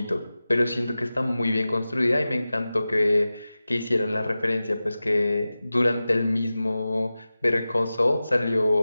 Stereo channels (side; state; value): both; inverted; correlation -0.96